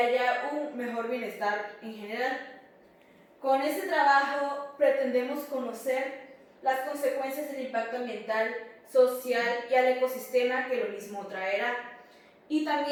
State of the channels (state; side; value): identical; both; correlation 1.00